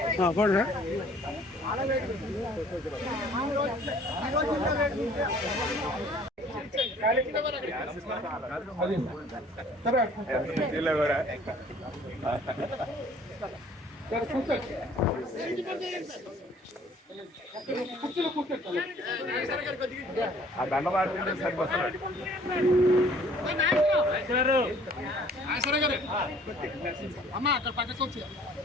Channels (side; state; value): both; normal; correlation 0.55